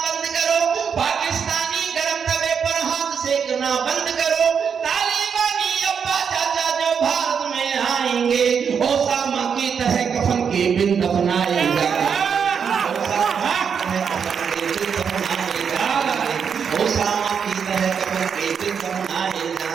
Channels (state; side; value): quieter; left; 6.9 dB